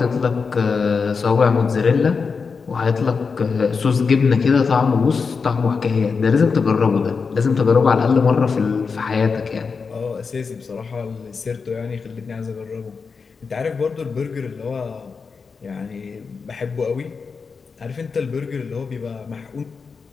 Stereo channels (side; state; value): right; quieter; 5.1 dB